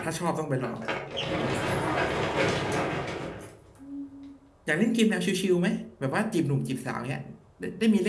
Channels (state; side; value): identical; both; correlation 1.00